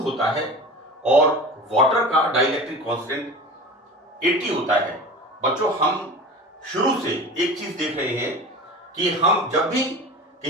होता है और वाटर का डाइलेक्ट्रिक कांस्टेंट 80 होता है। बच्चों, हम शुरू से एक चीज देख रहे हैं कि हम जब भी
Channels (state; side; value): normal; both; correlation 0.34